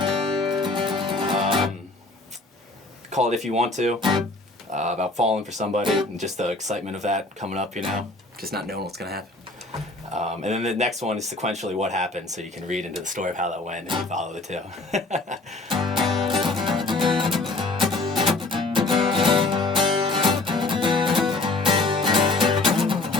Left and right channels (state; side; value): quieter; right; 3.1 dB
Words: Call it If You Want To. About falling for somebody and just the excitement of that coming up, you know, just not knowing what's gonna happen. And then the next one is sequentially what happened, so you can read into the story of how that went and you follow the two.